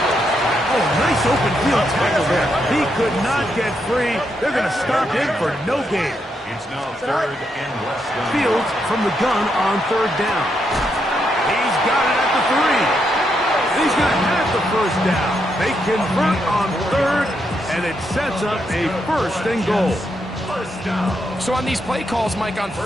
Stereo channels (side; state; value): both; normal; correlation 0.80